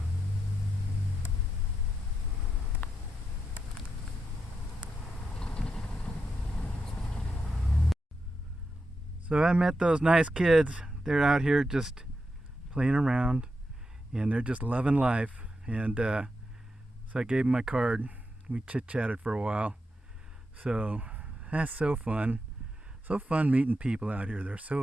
So I met those nice kids. They're out here just playing around, and they're just loving life. And so I gave them my card. We chit-chatted for a while. So that's so fun. So fun meeting people out here. They're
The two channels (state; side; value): normal; both; correlation 0.86